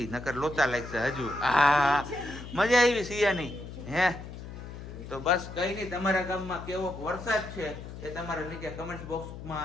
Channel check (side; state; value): left; noise; hum, 11 dB below the sound